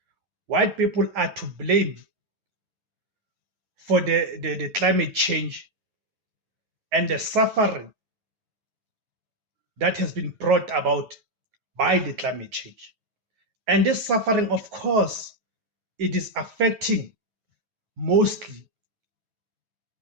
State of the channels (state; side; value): late; left; 9.2 ms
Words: White people are to blame for the climate change and the suffering that has been brought about by the climate change. And this suffering, of course, it is affecting mostly